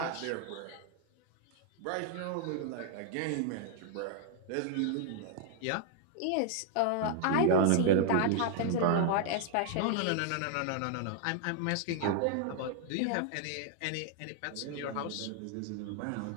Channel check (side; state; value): both; different; correlation 0.00